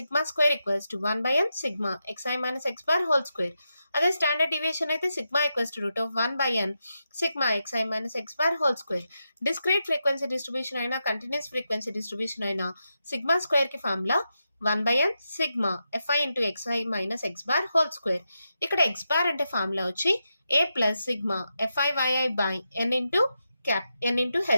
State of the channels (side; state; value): both; inverted; correlation -0.87